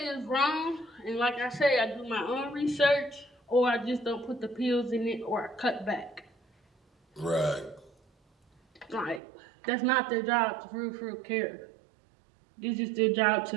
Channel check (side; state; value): left; drops out; at 9.2 s